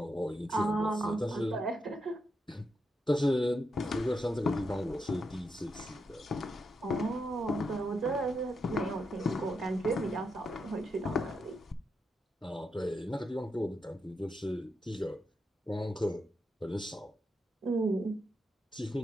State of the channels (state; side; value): normal; both; correlation 0.83